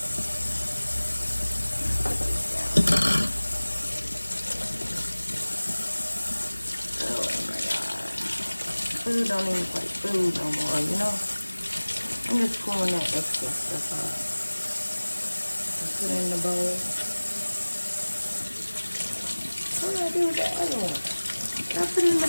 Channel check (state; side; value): inverted; both; correlation -1.00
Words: Food don't even like food no more, you know? I'm just pulling that extra stuff off. Just put it in the bowl. What do I do with that other one? Did I put it in